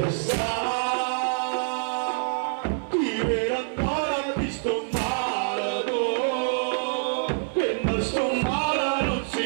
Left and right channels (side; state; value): left; silent; 58 dB below the other